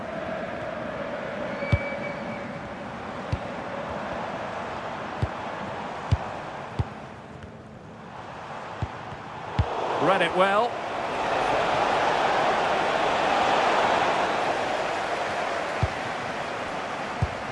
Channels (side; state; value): both; identical; correlation 1.00